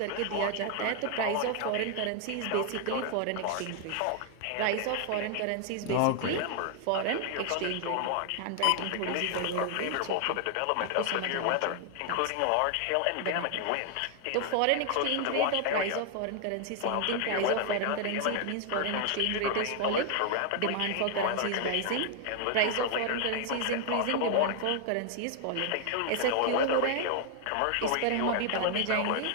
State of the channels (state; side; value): different; both; correlation 0.00